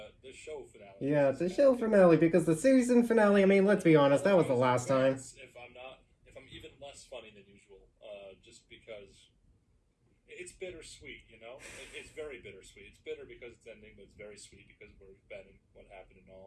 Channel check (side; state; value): both; identical; correlation 1.00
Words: the show finale. Yeah, it's a show finale because the season finale, I mean, let's be honest, that was the last time. If I'm even less funny than usual, just because it's bittersweet, you know? It's very bittersweet. It's bitter because it's ending, but it's very sweet because of where we've been and what happened and